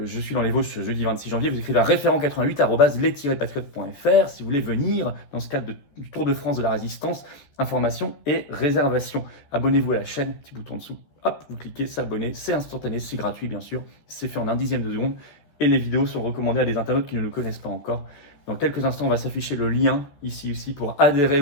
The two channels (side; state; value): right; late; 14 ms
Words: suis dans les Vosges ce jeudi 26 janvier. Vous écrivez à référent88@les-patriotes.fr si vous voulez venir dans ce cadre du Tour de France de la Résistance. Informations et réservations. Abonnez-vous à la chaîne, petit bouton en dessous. Hop, vous cliquez, s'abonner. C'est instantané, c'est gratuit bien sûr. C'est fait en un dixième de seconde. Et les vidéos sont recommandées à des internautes qui ne le connaissent pas encore. Dans quelques instants, on va s'afficher le lien ici aussi pour adhérer